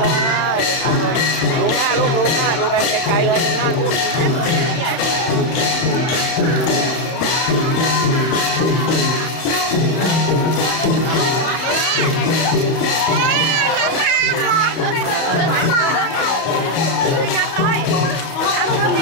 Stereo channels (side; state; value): right; late; 31 ms